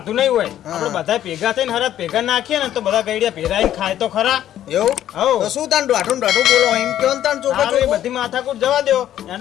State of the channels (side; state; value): right; quieter; 11.7 dB